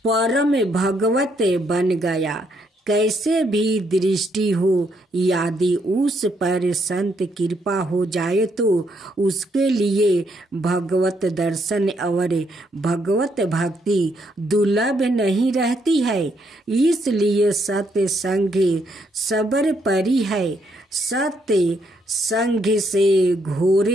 परम भगवत बन गया। कैसे भी दृष्टि हो, यदि उस पर संत कृपा हो जाए तो उसके लिए भगवत दर्शन और भगवत भक्ति दुर्लभ नहीं रहती है। इसलिए सत्य संग सबर परी है। सत्य संग से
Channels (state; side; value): normal; both; correlation 0.74